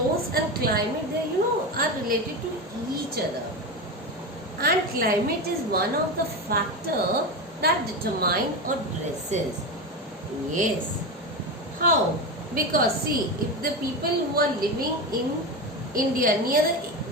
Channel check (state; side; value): normal; both; correlation 0.19